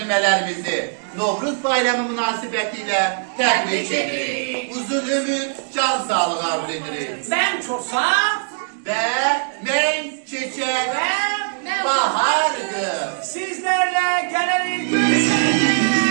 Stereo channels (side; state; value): left; silent; digital silence